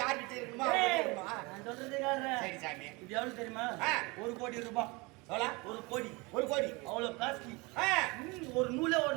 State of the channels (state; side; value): quieter; left; 26.0 dB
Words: யார்கிட்ட இருக்குமா ஏய், அவன்கிட்ட இருக்குமா? நான் சொல்றது கேளுடா. சரி சாமி இது எவ்வளவு தெரியுமா ஆ. 1 கோடி ரூபாய் எவ்வளோ 1 கோடி 1 கோடி அவ்வளவு காஸ்ட்லி ஆ. ஒரு நூலே